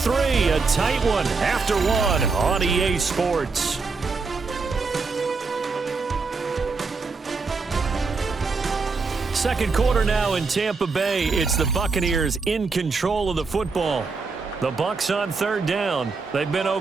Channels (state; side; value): quieter; left; 4.4 dB